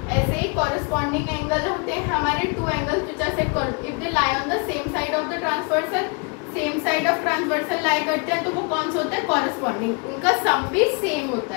ऐसे ही कॉरेस्पॉन्डिंग एंगल होते हैं हमारे two angles which are set if they lie on the same side of the transversal. Same side of transversal lie करते हैं तो वो कौन सा होता है, कॉरेस्पॉन्डिंग। उनका सम भी सेम होता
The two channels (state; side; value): quieter; right; 33.4 dB